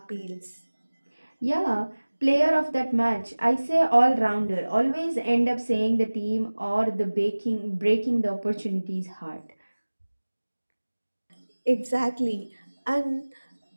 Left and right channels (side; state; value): both; inverted; correlation -1.00